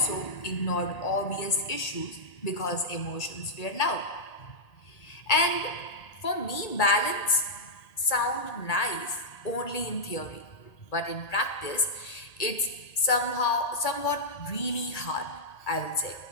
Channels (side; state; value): right; late; 1.8 ms